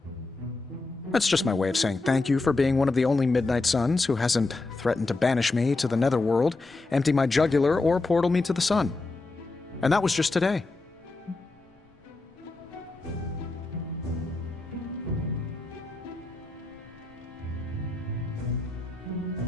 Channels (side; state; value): right; quieter; 3.3 dB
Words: That's just my way of saying thank you for being one of the only Midnight Suns who hasn't threatened to banish me to the Netherworld, empty my jugular, or portal me to the sun. And that was just today.